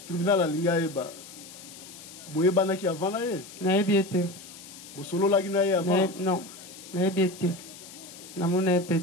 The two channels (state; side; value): noise; left; hiss, 16 dB below the sound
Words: tribunal alinga yeba boyebana ki avant na ye nayebi ete bosololaki na ye avant non nayebi ete namona ye pe